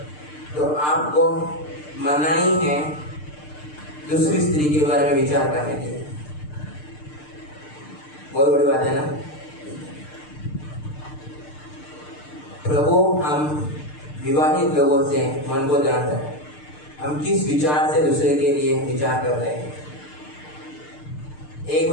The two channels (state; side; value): late; right; 6.7 ms